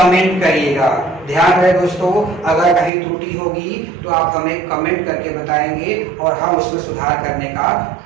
करिएगा। ध्यान रहे दोस्तों, अगर कहीं त्रुटि होगी तो आप हमें कमेंट करके बताएंगे और हम उसमें सुधार करने का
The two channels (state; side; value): drops out; left; at 2.9 s